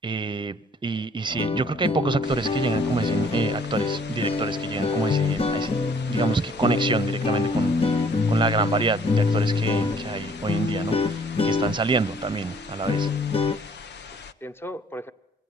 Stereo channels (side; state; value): both; normal; correlation 0.59